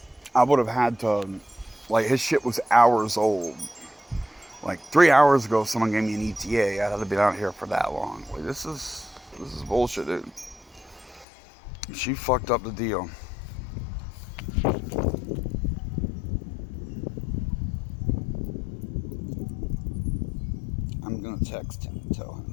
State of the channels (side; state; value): right; drops out; at 11.2 s